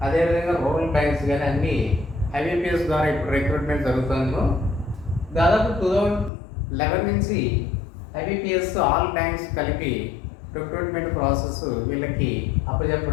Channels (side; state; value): right; drops out; at 6.3 s